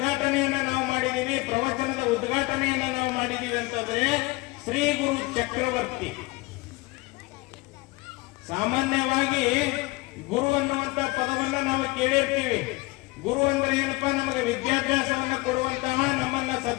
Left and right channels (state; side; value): quieter; right; 23.0 dB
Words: ನಾವು ಮಾಡಿದೀವಿ, ಪ್ರವಚನದ ಉದ್ಘಾಟನೆಯನ್ನ ನಾವು ಮಾಡಿದೀವಿ ಅಂತಂದ್ರೆ ಶ್ರೀ ಗುರು ಚಕ್ರವರ್ತಿ. ಸಾಮಾನ್ಯವಾಗಿ ಗುರು ಅನ್ನುವಂತ ಪದವನ್ನ ನಾವು ಕೇಳಿರ್ತೀವಿ. ಗುರು ಅಂದ್ರೆ ಏನಪ್ಪಾ, ನಮಗೆ ವಿದ್ಯಾಭ್ಯಾಸವನ್ನು ಕೊಡುವಂತಹ, ನಮ್ಮನ್ನ